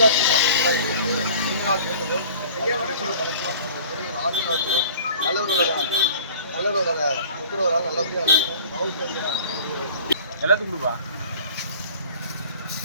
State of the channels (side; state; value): both; inverted; correlation -0.45